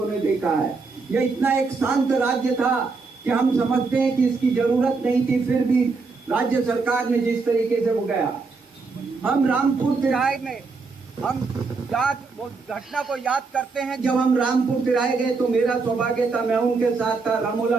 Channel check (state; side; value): quieter; left; 4.3 dB